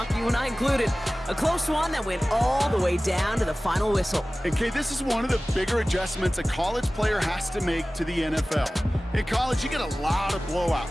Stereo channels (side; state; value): both; normal; correlation 0.97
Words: you and I included. A close one that went all the way down to the final whistle. And Kay, this is one of the bigger adjustments a college player has to make to the NFL. In college, you get a lot of